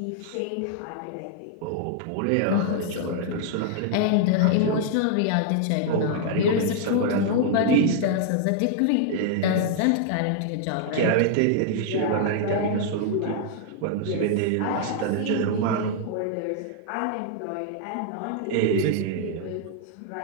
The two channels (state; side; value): different; both; correlation -0.01